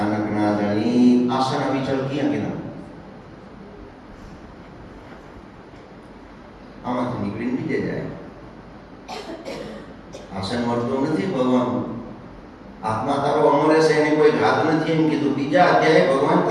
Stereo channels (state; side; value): identical; both; correlation 1.00